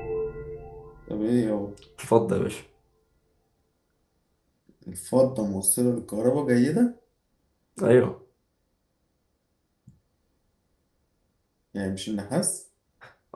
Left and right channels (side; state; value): both; identical; correlation 1.00